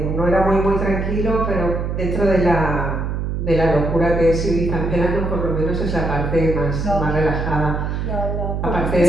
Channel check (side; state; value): right; noise; hum, 2 dB below the sound